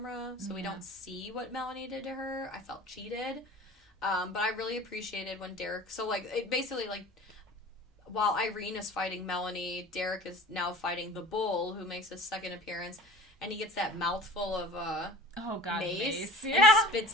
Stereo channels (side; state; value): both; normal; correlation 0.42